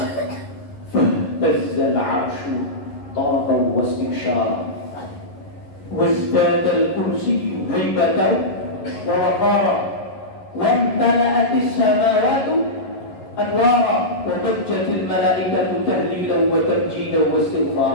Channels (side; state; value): right; late; 11 ms